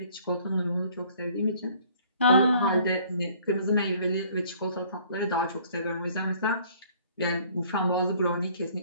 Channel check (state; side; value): inverted; both; correlation -0.57